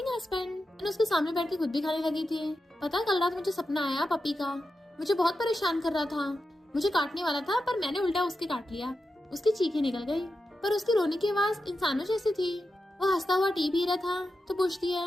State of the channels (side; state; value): both; normal; correlation 0.89